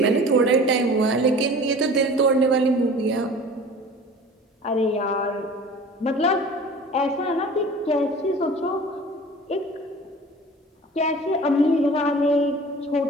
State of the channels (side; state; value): both; normal; correlation 0.42